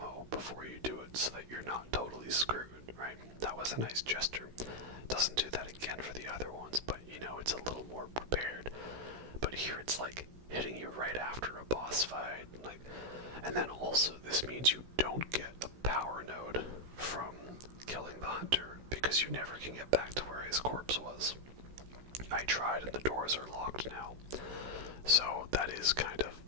before you do it so that you're not totally screwed, right? That was a nice gesture. Doesn't do that again for the other ones, but, you know, it's a little more prepared. But here it's, like, hitting you right after a boss fight, like, and then also this means you don't get a power node from killing the hunter, because you never can get back to where his corpse was. I tried and the doors are locked now. So that is kind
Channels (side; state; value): left; late; 16 ms